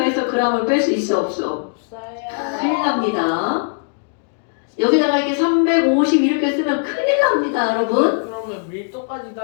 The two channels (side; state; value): right; silent; digital silence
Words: g을 뺄 수 있어 없어? 큰일 납니다. 여기다가 이렇게 350 이렇게 쓰면 큰일 납니다, 여러분. 그럼 그러면 밀도까지